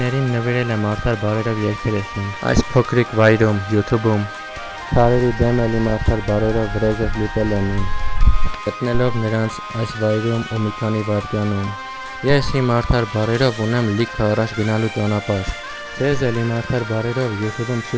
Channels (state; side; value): identical; both; correlation 1.00